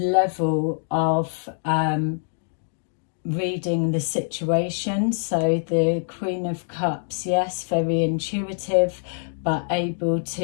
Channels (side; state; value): right; silent; digital silence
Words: of reading the situation. So the Queen of Cups, yes, very intuitive, but able